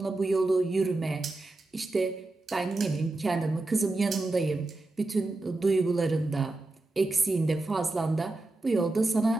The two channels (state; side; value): quieter; left; 3.0 dB